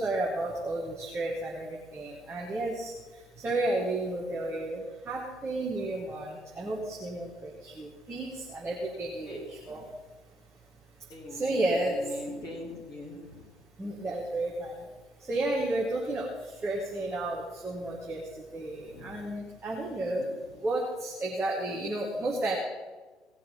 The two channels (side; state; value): both; normal; correlation 0.76